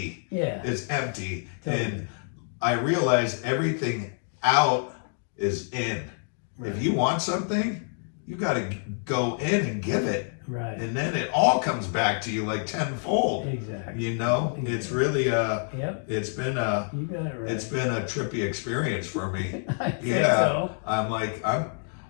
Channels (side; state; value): right; silent; 60 dB below the other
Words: Yeah. It's empty. Totally. And I realize everything out is in. Right. If you want something, you got to go in and give it. Right. And then it all comes back to you like tenfold. Exactly. You know, Exactly. it's really Yep. it's been You got it right. it's been a trippy experience for me. I think Yeah. so. I'm like